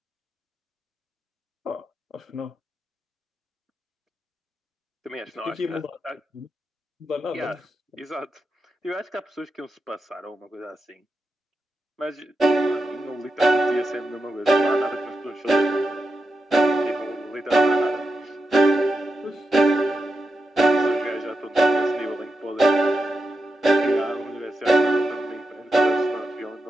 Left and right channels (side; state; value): both; normal; correlation 0.88